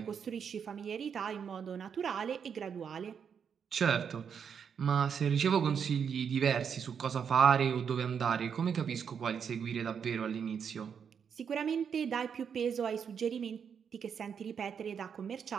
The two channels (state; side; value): quieter; left; 7.2 dB